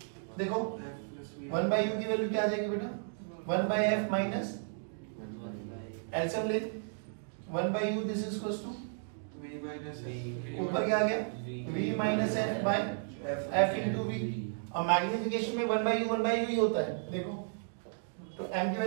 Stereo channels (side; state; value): left; silent; digital silence